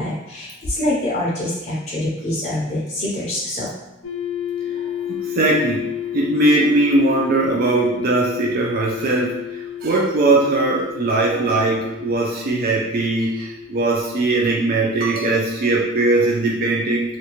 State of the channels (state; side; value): normal; both; correlation 0.37